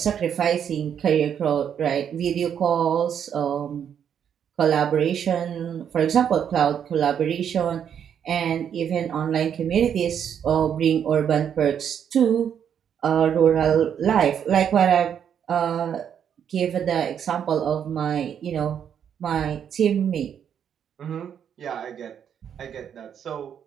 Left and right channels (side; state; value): left; quieter; 8.5 dB